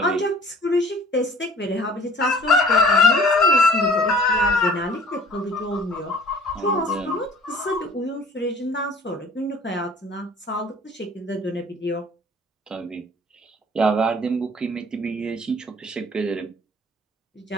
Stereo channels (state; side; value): normal; both; correlation 0.50